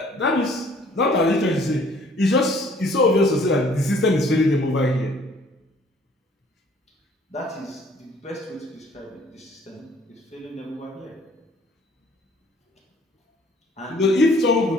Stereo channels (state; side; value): normal; both; correlation 0.57